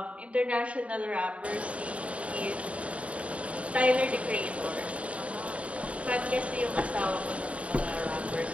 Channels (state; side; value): late; left; 0.064 ms